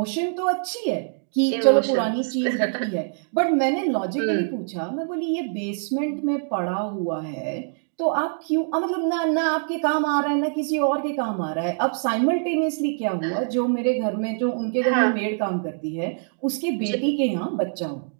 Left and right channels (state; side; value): silent; left; digital silence